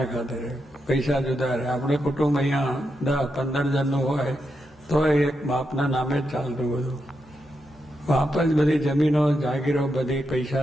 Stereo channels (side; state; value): both; normal; correlation 0.85